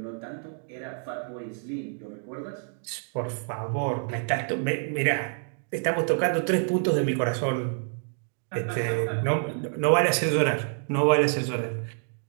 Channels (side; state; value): left; silent; 60 dB below the other